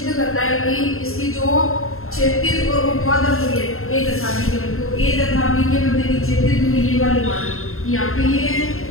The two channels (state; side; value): late; right; 0.62 ms